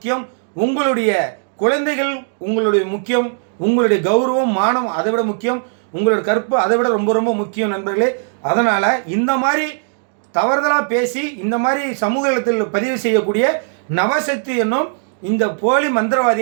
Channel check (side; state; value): left; silent; digital silence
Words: உங்களுடைய குழந்தைகள் உங்களுடைய முக்கியம், உங்களுடைய கௌரவம் மானம் அதை விட முக்கியம், உங்களோட கற்பு அதை விட ரொம்ப ரொம்ப முக்கியம் நண்பர்களே. அதனால் இந்த மாதிரி தவறுதலாக பேசி இந்த மாதிரி சமூகத்தில் பதிவு செய்யக்கூடிய நவசக்தி என்னும் இந்த போலி